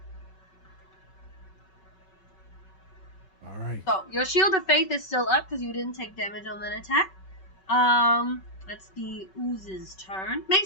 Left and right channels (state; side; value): late; right; 5.3 ms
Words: All right. So your Shield of Faith is still up because you didn't take damage on that attack. That's the ooze's turn.